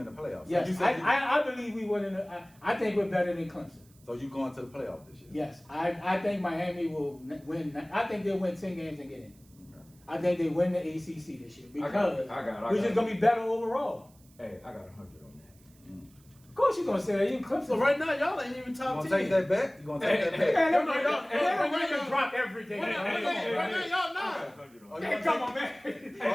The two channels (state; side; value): noise; right; hiss, 29 dB below the sound